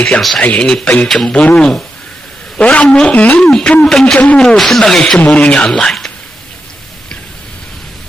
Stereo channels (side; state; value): both; normal; correlation 0.87